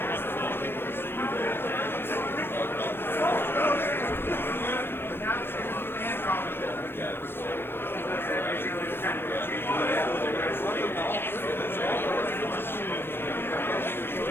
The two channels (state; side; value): late; right; 0.11 ms